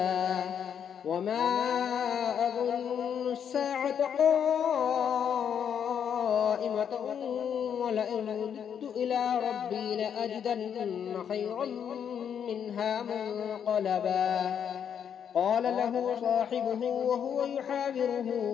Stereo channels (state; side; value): quieter; right; 8.2 dB